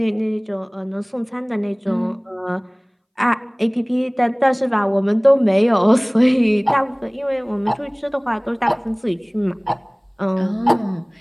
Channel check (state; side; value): identical; both; correlation 1.00